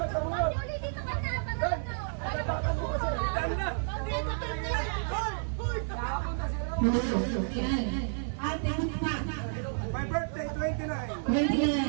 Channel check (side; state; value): left; silent; 57 dB below the other